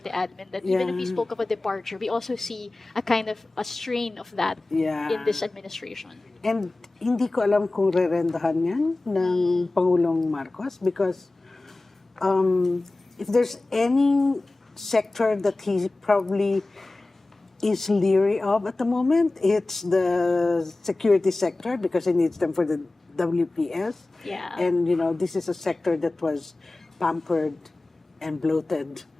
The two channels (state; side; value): quieter; right; 3.0 dB